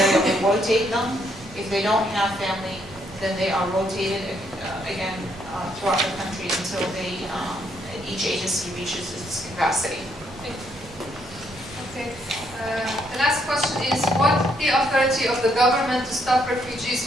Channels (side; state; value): right; noise; rumble, 20 dB below the sound